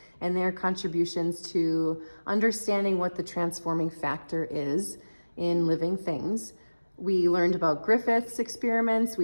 and their contributions to understanding what the transforming factor is in living things. We learned about Griffith's experiments,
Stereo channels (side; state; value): both; inverted; correlation -1.00